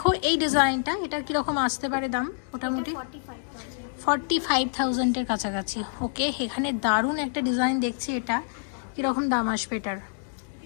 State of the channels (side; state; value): right; silent; digital silence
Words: এই ডিজাইনটা, এটা কীরকম আসতে পারে দাম? মোটামুটি 45,000-এর কাছাকাছি। ওকে, এখানে দারুণ একটা ডিজাইন দেখছি, এটা কীরকম দাম আসবে এটার?